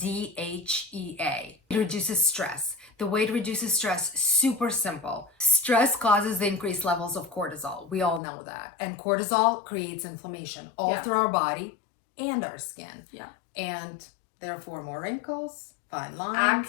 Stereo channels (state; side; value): drops out; right; at 8.2 s